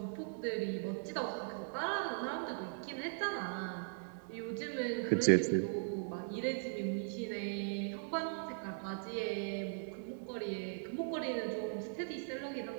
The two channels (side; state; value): left; silent; digital silence